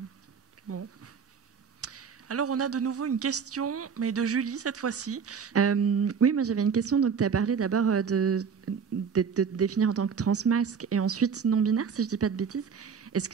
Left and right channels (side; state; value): left; quieter; 6.4 dB